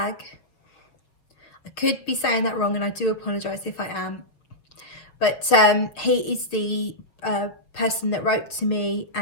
I could be saying that wrong and I do apologise if I am. But he is the person that wrote to me,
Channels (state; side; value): late; right; 6.4 ms